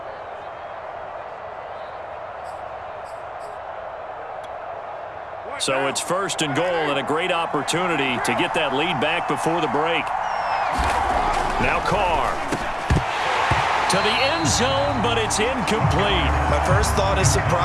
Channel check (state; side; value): identical; both; correlation 1.00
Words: So it's first and goal and a great opportunity to get that lead back before the break. Now Carr. To the end zone, but it's incomplete. My first thought is